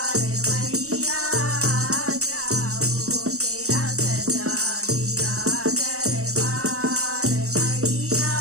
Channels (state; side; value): late; left; 0.64 ms